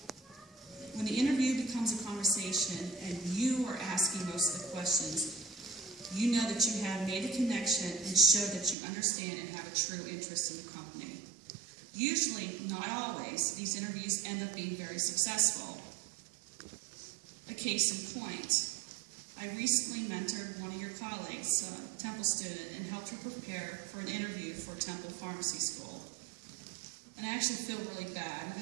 When the interview becomes a conversation and you are asking most of the questions, you know that you have made a connection and show that you understand and have a true interest in the company. Usually, not always, these interviews end up being very successful. A case in point, I recently mentored one of your colleagues, a Temple student, and helped her prepare for an interview for Temple Pharmacy School. And I actually feel really bad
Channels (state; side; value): drops out; left; at 8.8 s